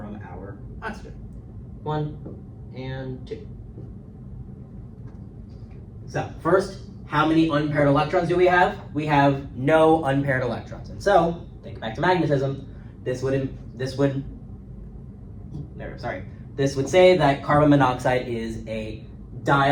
our oxygen. 1 and 2. So first, how many unpaired electrons do we have? We have no unpaired electrons. And so, think back to magnetism, this would say that carbon monoxide is a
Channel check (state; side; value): identical; both; correlation 1.00